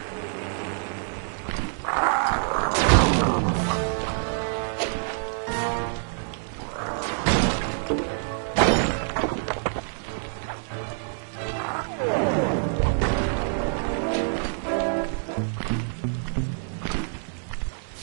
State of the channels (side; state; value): left; silent; digital silence